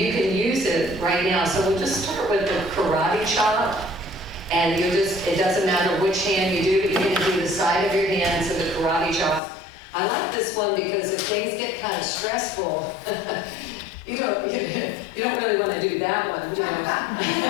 can use it right now. So we'll just start with the karate chop, and it doesn't matter which hand you do, but you're going to do the side of your hand, so the karate chop. I like this one because if things get kind of stressful, you don't really want to do that one, but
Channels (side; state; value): right; drops out; at 9.4 s